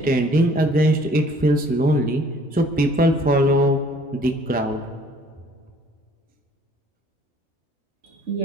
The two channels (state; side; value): normal; both; correlation 0.56